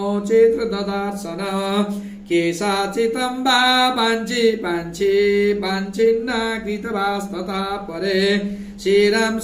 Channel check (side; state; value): both; identical; correlation 1.00